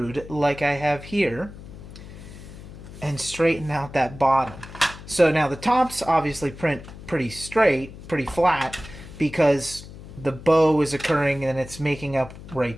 like I have here and straighten out that bottom. So now the tops obviously print pretty straight, pretty flat, because the bow is occurring and it's making up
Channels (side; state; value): left; noise; hum, 15 dB below the sound